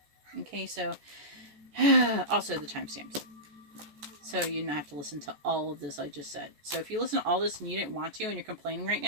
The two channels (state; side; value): late; left; 14 ms